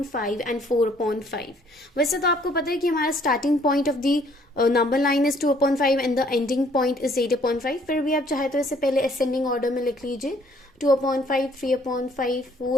5 and 4 upon 5. वैसे तो आपको पता है कि हमारा starting point of the number line is 2 upon 5 and the ending point is 8 upon 5. फिर भी आप चाहे तो इसे पहले ascending order में लिख लीजिए. 2 upon 5, 3 upon 5,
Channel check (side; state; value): both; normal; correlation 0.62